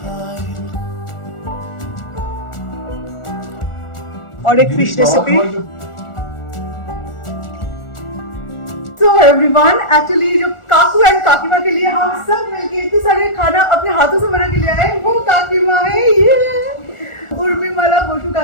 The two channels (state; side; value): late; right; 1.4 ms